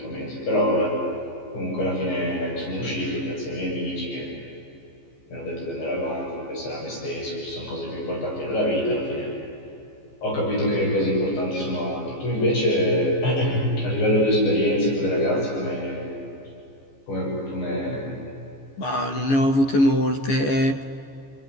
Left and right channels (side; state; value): right; late; 15 ms